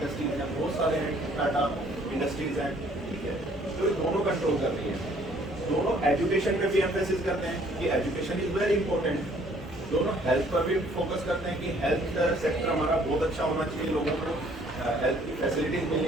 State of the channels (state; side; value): normal; both; correlation 0.60